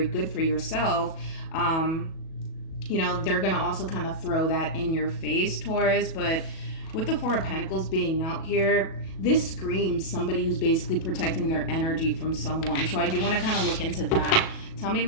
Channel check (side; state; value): right; late; 37 ms